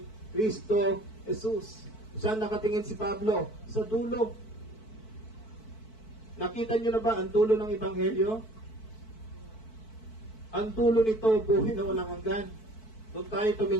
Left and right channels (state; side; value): late; right; 4.6 ms